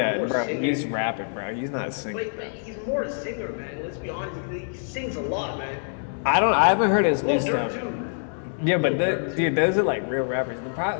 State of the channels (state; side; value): silent; right; digital silence